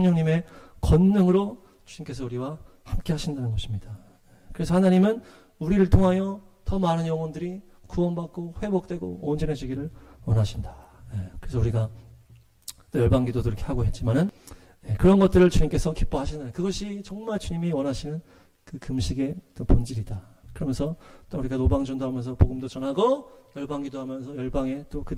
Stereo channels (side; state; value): both; identical; correlation 1.00